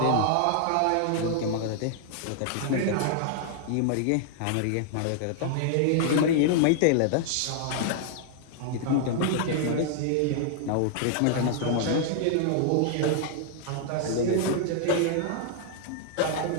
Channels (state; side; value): different; both; correlation 0.00